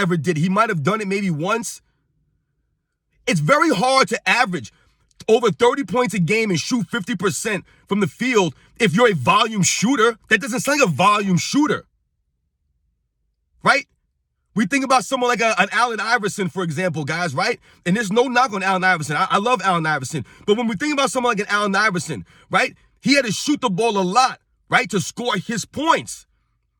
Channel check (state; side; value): identical; both; correlation 1.00